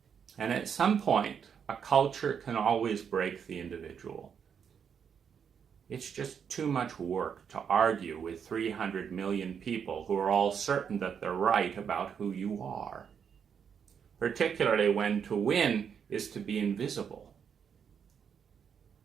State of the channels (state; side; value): quieter; left; 7.4 dB